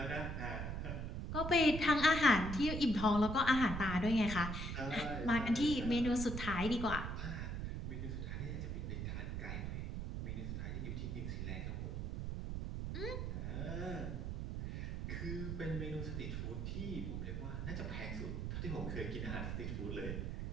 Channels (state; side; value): noise; right; rumble, 3 dB below the sound